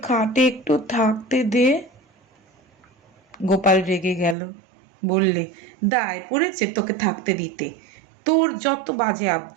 খাটে একটু থাকতে দে। গোপাল রেগে গেল, বললে, দায় পড়েছে তোকে থাকতে দিতে? তোর যত বাজে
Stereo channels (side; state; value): left; drops out; at 4.4 s